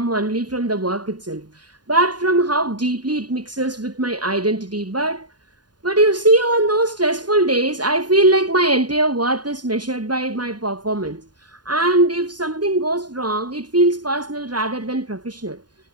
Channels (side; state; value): left; late; 0.70 ms